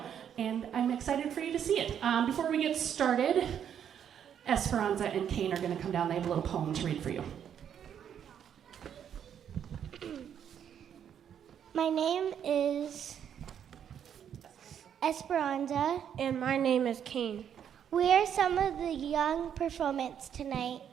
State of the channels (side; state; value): left; quieter; 8.9 dB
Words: and I'm excited for you to see it. Before we get started, Esperanza and Kane are going to come down. They have a little poem to read for you. My name is Esperanza. And my name is Kane. We are some of the young performance tonight.